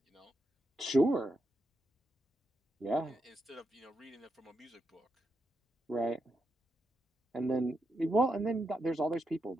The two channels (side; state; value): both; normal; correlation 0.84